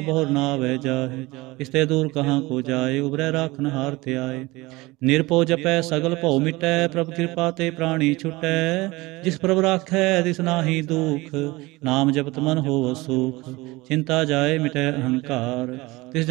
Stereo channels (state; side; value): quieter; left; 21.5 dB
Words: बहुर नावै जाहे। इसते दूर कहाँ को जाए, उबरै राखन हार ते आए। निरपो जपै सगल भौ मिटै, प्रभ कृपा ते प्राणी छुटै। जिस प्रभ राखै तिस नाहि दुख, नाम जपत मन होव सुख। चिंता जाए मिटै अहंकार, तिस